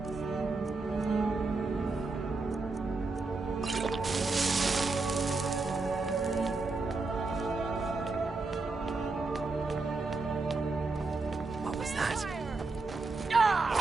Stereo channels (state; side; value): quieter; left; 3.7 dB